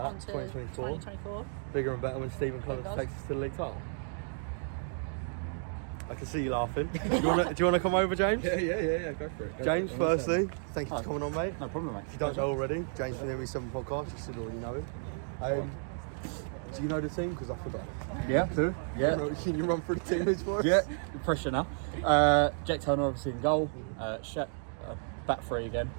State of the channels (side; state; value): left; silent; 56 dB below the other